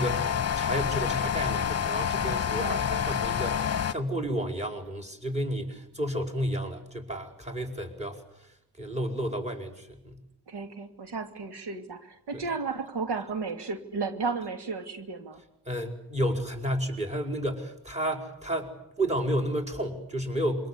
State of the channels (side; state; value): both; normal; correlation 0.28